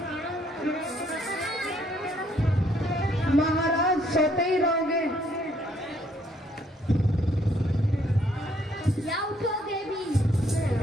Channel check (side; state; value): both; normal; correlation 0.67